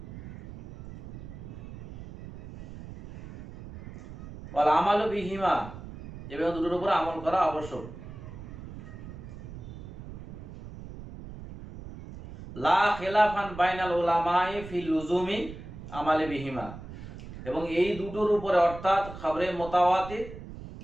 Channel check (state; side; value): noise; right; rumble, 13 dB below the sound